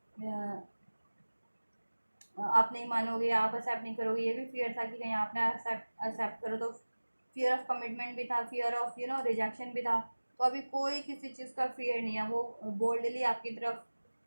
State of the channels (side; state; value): both; inverted; correlation -1.00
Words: आप नहीं मानोगे, आप एक्सेप्ट नहीं करोगे, ये भी फियर था कि कहीं आपने एक्सेप्ट करो तो। फियर ऑफ कमिटमेंट भी था, फियर ऑफ रिजेक्शन भी था। तो अभी कोई किसी चीज़ का फियर नहीं है, वो बोल्डली आपकी तरफ